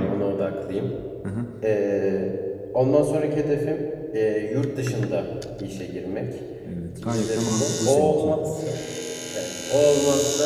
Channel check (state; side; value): identical; both; correlation 1.00